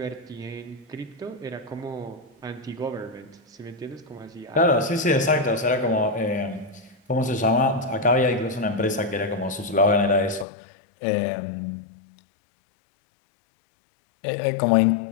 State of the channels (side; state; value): right; drops out; at 10.5 s